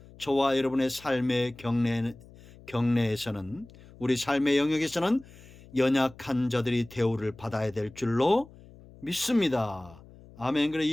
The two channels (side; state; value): left; noise; hum, 22 dB below the sound